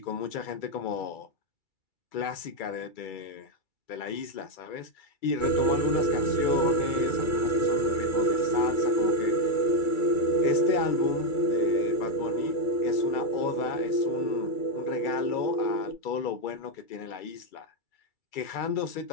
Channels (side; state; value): right; late; 2.3 ms